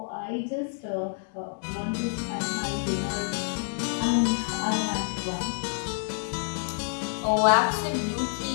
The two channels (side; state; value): right; silent; digital silence